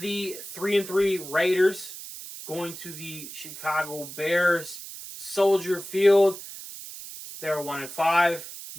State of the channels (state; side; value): noise; right; hiss, 12 dB below the sound